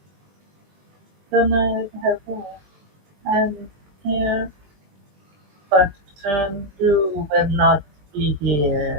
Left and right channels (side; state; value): left; late; 20 ms